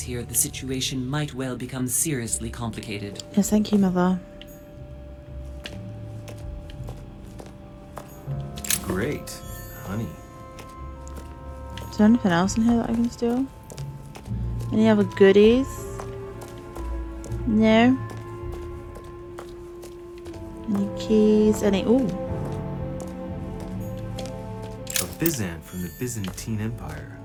here, the situation might well become seriously complicated. Yes, thank you, Mother. Great, honey. Is there anything else in here that I can steal? Any other goodies? No. Any keys? Any? Ooh. A Byzant from the Byzantine Empire.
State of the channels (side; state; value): both; identical; correlation 1.00